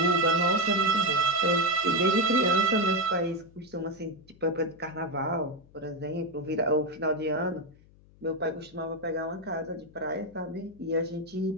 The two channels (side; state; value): left; noise; hum, 26 dB below the sound